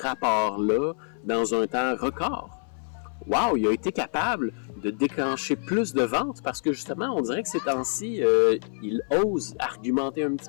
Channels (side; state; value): right; silent; 58 dB below the other